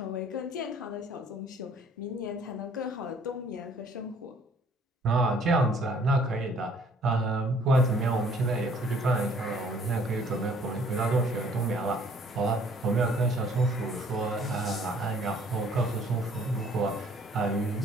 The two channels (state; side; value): normal; both; correlation 0.58